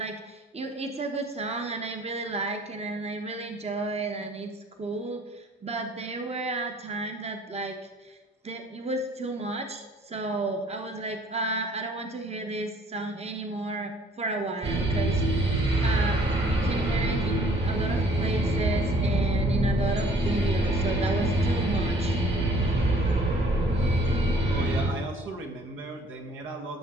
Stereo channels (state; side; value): normal; both; correlation 0.56